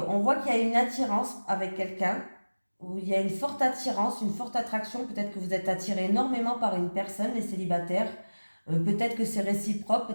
on voit qu'il y a une attirance avec quelqu'un, où il y a une forte attirance, une forte attraction. Peut-être que vous êtes attiré énormément par une personne, les célibataires. Peut-être que c'est réciproque,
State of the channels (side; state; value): both; inverted; correlation -1.00